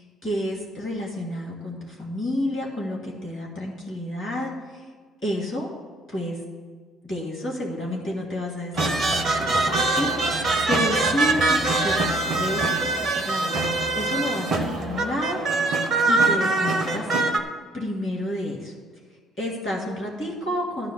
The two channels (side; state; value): both; normal; correlation 0.62